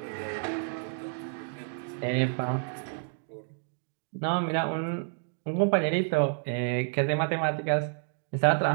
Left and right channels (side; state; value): left; silent; 58 dB below the other